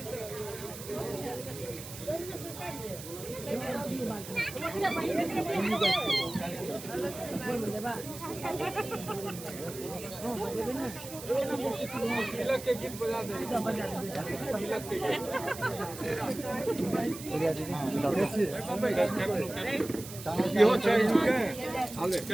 तिलक के गीत बजा दे। तिलक के गीत यो चाहिए के आले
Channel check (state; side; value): noise; right; hiss, 12 dB below the sound